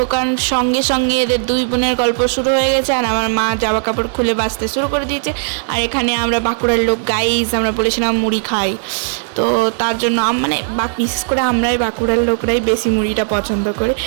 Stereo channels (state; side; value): silent; left; 65 dB below the other